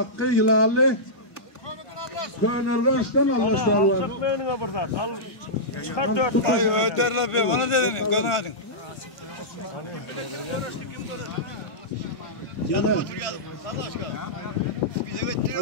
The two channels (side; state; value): right; late; 1.5 ms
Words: hilalli. Gönülgönçten Allah aşkına. Sakmayın buradan. Al. Çıkar 4 Ay öderler be bana dedin. Gönadın.